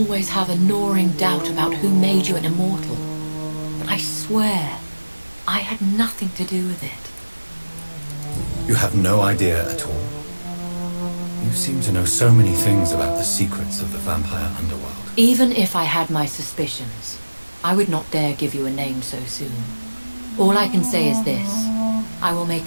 have a gnawing doubt about who made you an immortal, but I swear I had nothing to do with it. You have no idea at all? You seem to know so many things about the secrets of the vampire underworld. Even if I had my suspicions, I would not dare give you a name so soon. All I can say is this. I will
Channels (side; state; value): both; inverted; correlation -1.00